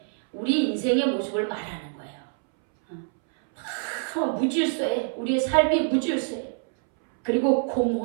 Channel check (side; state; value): left; silent; 61 dB below the other